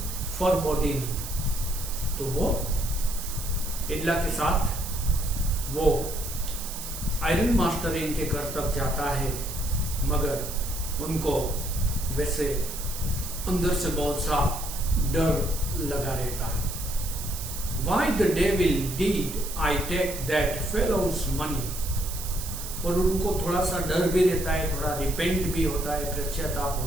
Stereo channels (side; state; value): right; noise; hiss, 8 dB below the sound